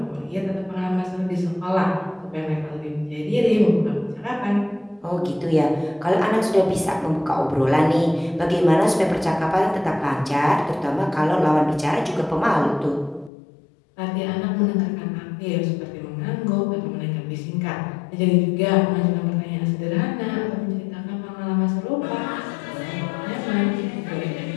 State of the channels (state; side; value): drops out; right; at 13.3 s